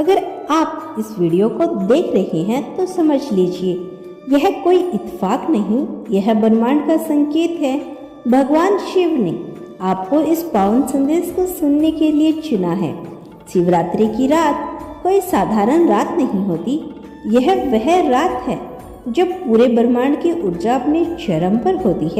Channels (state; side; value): identical; both; correlation 1.00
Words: आप इस वीडियो को देख रहे हैं तो समझ लीजिए यह कोई इत्तेफाक नहीं, यह ब्रह्मांड का संकेत है। भगवान शिव ने आपको इस पावन संदेश को सुनने के लिए चुना है। शिवरात्रि की रात कोई साधारण रात नहीं होती, यह वह रात है जब पूरे ब्रह्मांड की ऊर्जा अपने चरम पर होती